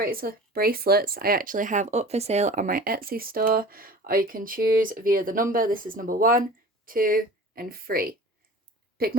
I actually have up for sale on my Etsy store, or you can choose via the number. This is number 1, 2 and 3. Pick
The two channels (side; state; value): both; normal; correlation 0.40